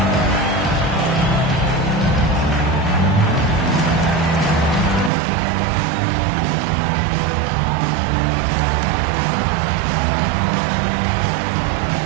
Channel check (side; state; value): left; drops out; at 5.1 s